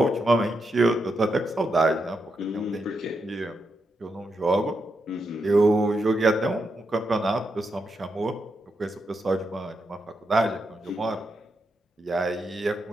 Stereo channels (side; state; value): both; normal; correlation 0.84